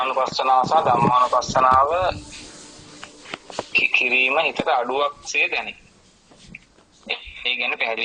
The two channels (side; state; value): both; identical; correlation 1.00